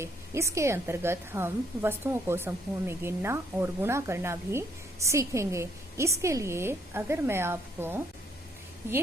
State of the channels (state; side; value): normal; both; correlation 0.68